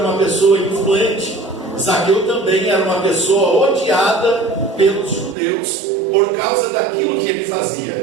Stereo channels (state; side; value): drops out; left; at 5.4 s